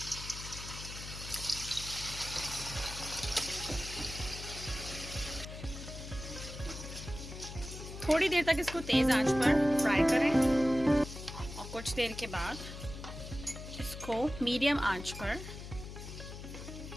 थोड़ी देर तक इसको तेज आंच पर फ्राई करें और कुछ देर के बाद इसको मीडियम आंच पर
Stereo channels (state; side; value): noise; left; hum, 11 dB below the sound